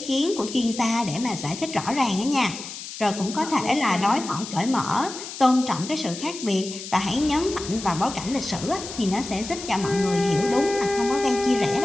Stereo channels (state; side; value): noise; left; hiss, 10 dB below the sound